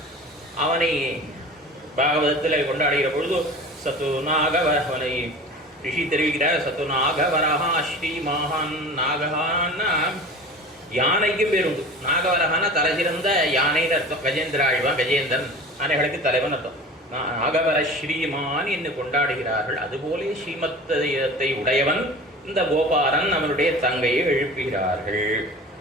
அவனை பாகவதத்தில் கொண்டாடுகிற பொழுது சத்து நாகவ அவனை ரிஷி தெரிவிக்கிறார். சத்து நாகவரஹா ஸ்ரீ மகான். நாகஹான்னா யானைக்கு பேர் உண்டு. நாகவரஹானா தலை சிறந்த யானைன்னு அர்த்தம். கஜேந்திர ஆழ்வான் கஜேந்திரன் யானைகளுக்கு தலைவன் அர்த்தம். நாகவர ஸ்ரீமான் என்று கொண்டாடுகிறார்கள். அதுபோலே ஸ்ரீமத்தத்தை உடையவன் இந்த கோபாலன். அவனுடைய தங்கையை எழுப்புகிறார்கள்.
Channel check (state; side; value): normal; both; correlation 0.37